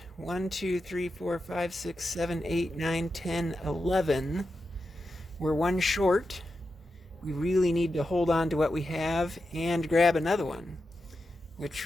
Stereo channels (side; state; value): both; normal; correlation 0.89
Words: 1, 2, 3, 4, 5, 6, 7, 8, 9, 10, 11. We're 1 short. We really need to hold on to what we have and grab another one,